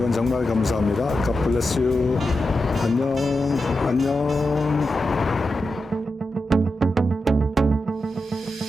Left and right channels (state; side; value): normal; both; correlation 0.89